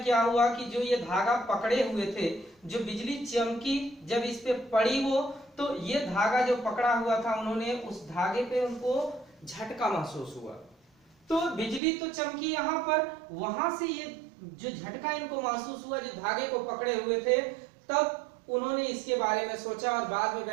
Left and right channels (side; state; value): left; drops out; at 11.8 s